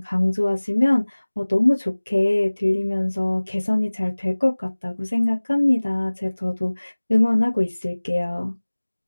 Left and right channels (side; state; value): both; inverted; correlation -1.00